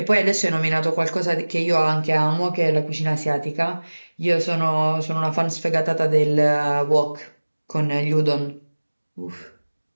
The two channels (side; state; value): both; inverted; correlation -1.00